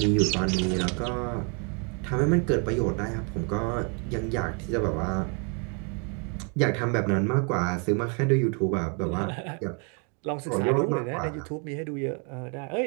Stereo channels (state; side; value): quieter; left; 36.6 dB